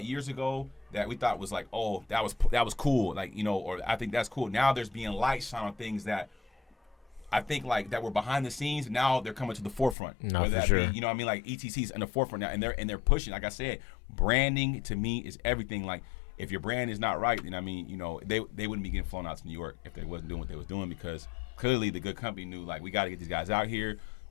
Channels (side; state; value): right; drops out; at 10.0 s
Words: years ago that we thought was like, oh, that was cool, like or I think that's cool. Now there's being light shine on things that I think like that were behind the scenes. Now they're coming to the forefront. Whether that be, I mean, like ETC's in the forefront now, and they're pushing. Like I said, branding to me is everything. Like if your brand is not right, then I mean, they wouldn't be getting flown out to New York if they wasn't doing what they was doing because clearly the Good Company knew like we got to get these guys out here.